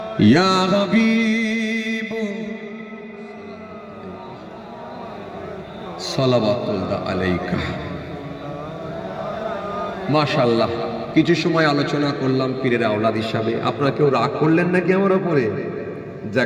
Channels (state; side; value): identical; both; correlation 1.00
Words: या हबीब সালাওয়াতুল্লাহ আলাইকা। মাশাআল্লাহ, কিছু সময় আলোচনা করলাম পীরের আওলাদ হিসাবে। আপনারা কেউ রাগ করলেন নাকি আমার উপরে?